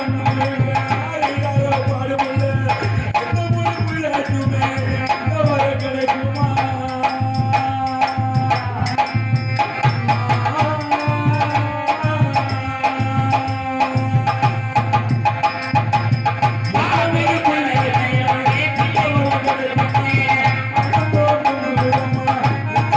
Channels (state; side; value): identical; both; correlation 1.00